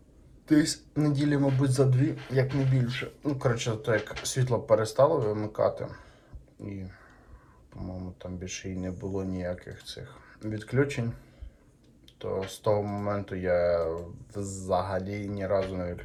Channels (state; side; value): identical; both; correlation 1.00